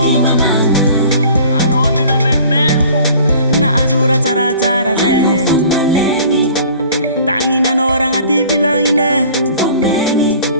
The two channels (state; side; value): inverted; both; correlation -0.49